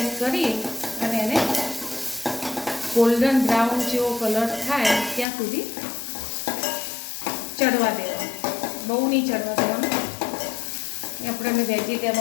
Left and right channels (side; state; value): right; drops out; at 5.2 s